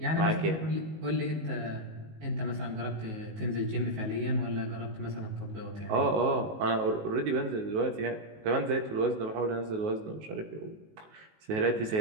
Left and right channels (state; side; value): late; left; 19 ms